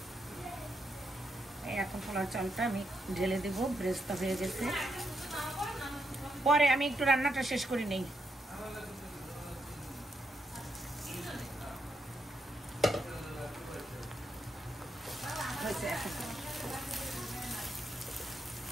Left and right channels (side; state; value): both; normal; correlation 0.80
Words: এখন পোলাও চালটা আমি ঢেলে দেবো, ব্রেস্তা হয়ে গেছে। পরে আমি একটু রান্নাটা শেষ করে নেই।